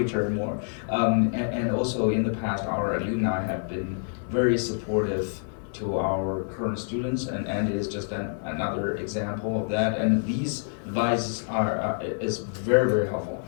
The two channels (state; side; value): silent; right; digital silence